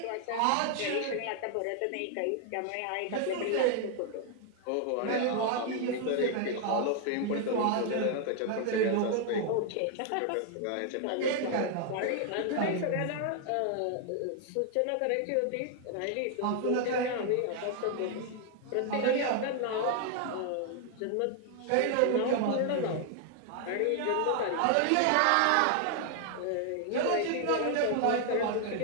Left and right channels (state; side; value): different; both; correlation 0.00